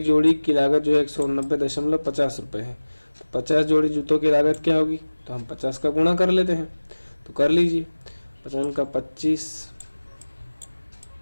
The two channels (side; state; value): both; inverted; correlation -1.00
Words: जोड़ी की लागत जो है 190.50 रुपये है। तो 50 जोड़ी जूतों की लागत क्या होगी, तो हम 50 का गुणा कर लेते हैं। तो कर लीजिए, 50 का 25,